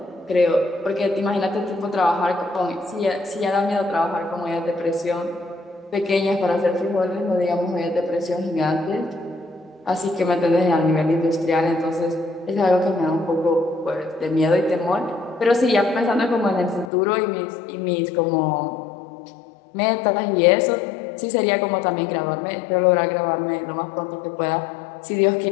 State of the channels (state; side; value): drops out; right; at 16.9 s